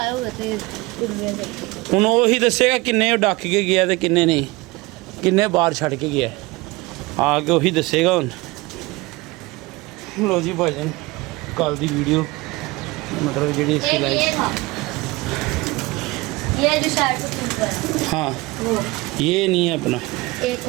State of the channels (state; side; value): quieter; left; 22.5 dB